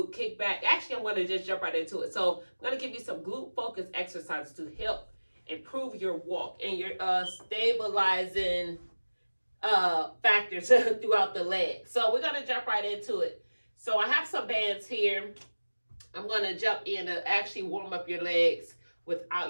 kickback, actually I'm going to just jump right into it. So I'm going to give you some glute focused exercises to help improve your walk and your stabilizing factors throughout the leg. So we're going to jump right into it. So I have some bands here. I'm going to jump in to actually warm up your legs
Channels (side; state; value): both; inverted; correlation -1.00